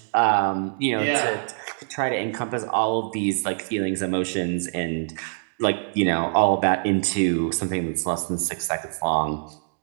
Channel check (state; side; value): silent; left; digital silence